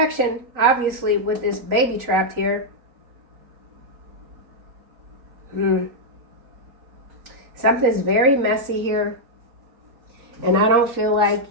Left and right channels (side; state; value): left; late; 3.9 ms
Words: obviously, with this baby trapped here. Something's very messy here. And I don't feel like